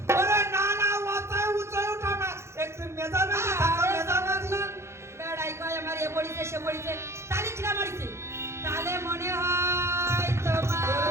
ওরে না না মাথায় উঁচাই ওঠা না একটু মেজামেজি থাকা মেজামেজি বেড়াই কয় আমার এ মরিছে সে মরিছে তাহলে খিদা মরিছে তাহলে মনে হয় তোমার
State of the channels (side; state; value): left; late; 0.13 ms